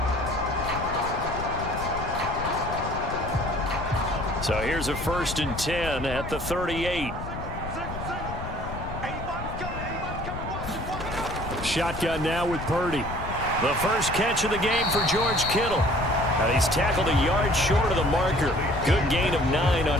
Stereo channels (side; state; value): left; noise; rumble, 8 dB below the sound